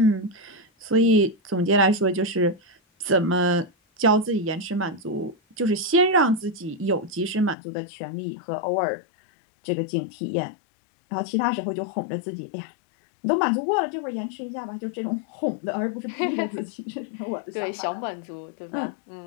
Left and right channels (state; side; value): drops out; right; at 7.6 s